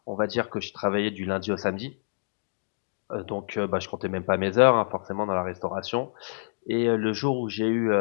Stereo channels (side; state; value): right; silent; digital silence